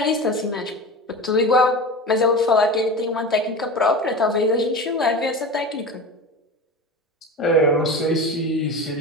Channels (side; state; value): both; normal; correlation 0.29